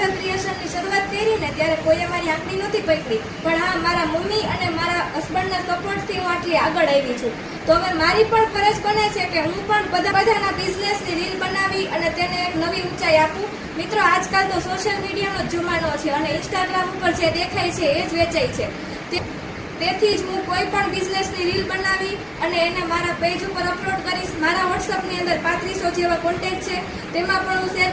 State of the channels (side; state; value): both; identical; correlation 1.00